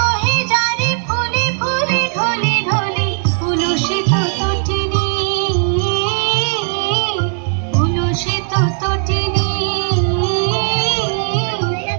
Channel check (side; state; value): left; silent; 57 dB below the other